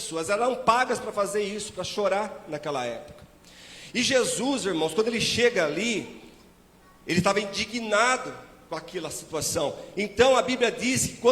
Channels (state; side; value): identical; both; correlation 1.00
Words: eram pagas para fazer isso, para chorar naquela época. E Jesus, irmãos, quando ele chega ali, ele estava indignado com aquela situação. Então a Bíblia diz que